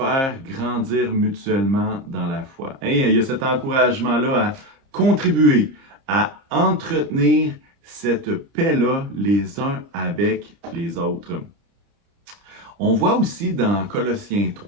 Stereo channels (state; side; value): late; left; 30 ms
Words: grandir mutuellement dans la foi. » Il y a cet encouragement-là à contribuer, à entretenir cette paix-là les uns avec les autres. On voit aussi dans Colossiens